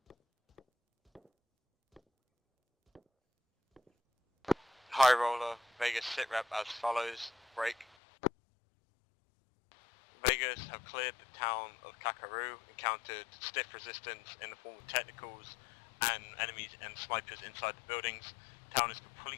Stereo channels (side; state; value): right; drops out; at 7.9 s